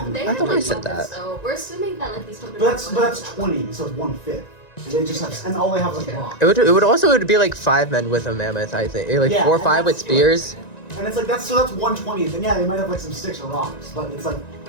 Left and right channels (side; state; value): right; late; 1.9 ms